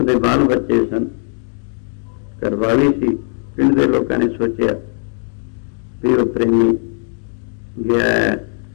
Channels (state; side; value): silent; right; 60 dB below the other